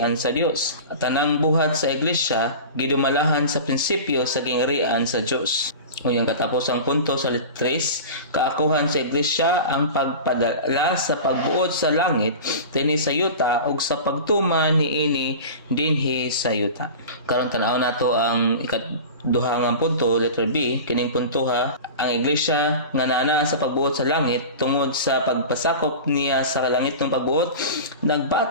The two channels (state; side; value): inverted; both; correlation -0.33